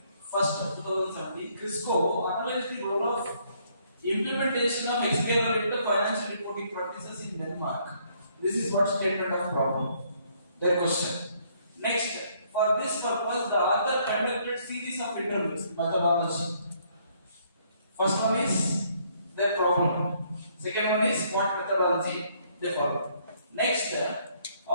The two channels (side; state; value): both; inverted; correlation -0.67